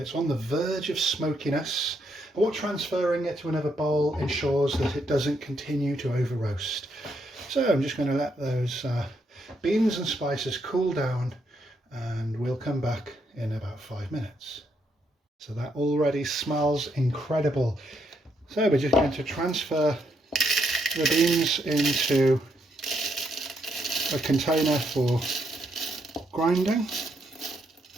it's on the verge of smokiness. And what transferring it to another bowl ensures that it doesn't continue to over roast. So I'm just going to let those beans and spices cool down, and we'll come back in about 5 minutes. So that already smells incredible. So we're just going to transfer the beans into a container for grinding.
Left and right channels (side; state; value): both; normal; correlation 0.76